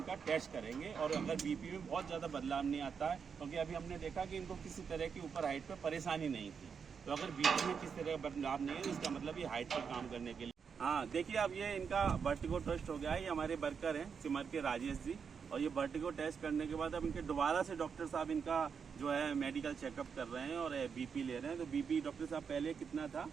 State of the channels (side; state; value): left; quieter; 6.3 dB